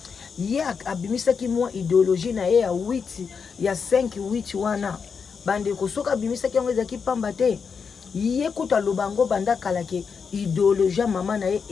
ye abimisaki mwa idéologie na ye ya 8 ya 5-8 wana bande kosoka abimisaki yango ezaki pamba te ye kuta lobango banda kalake idéologie mama na ye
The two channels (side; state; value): right; quieter; 5.9 dB